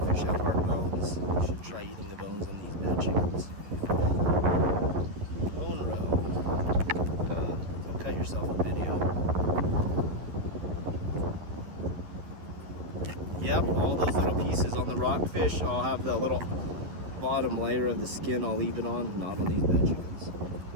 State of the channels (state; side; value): late; left; 11 ms